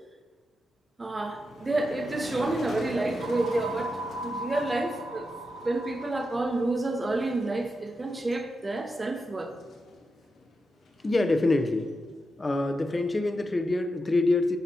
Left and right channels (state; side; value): normal; both; correlation 0.87